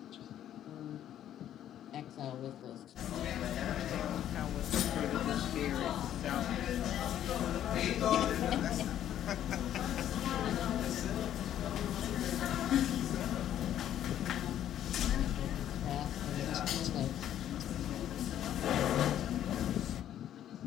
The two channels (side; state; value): right; quieter; 11.1 dB